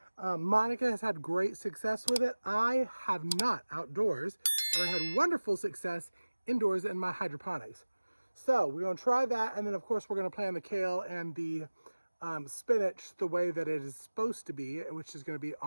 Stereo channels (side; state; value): both; inverted; correlation -1.00